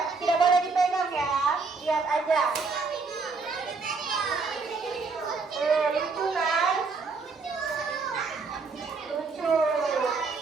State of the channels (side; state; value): left; quieter; 4.3 dB